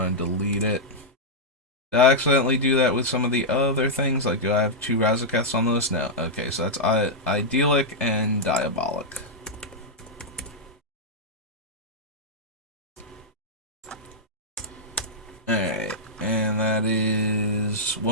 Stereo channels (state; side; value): normal; both; correlation -0.06